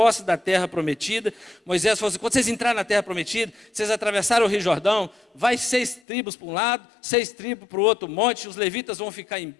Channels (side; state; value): right; drops out; at 6.0 s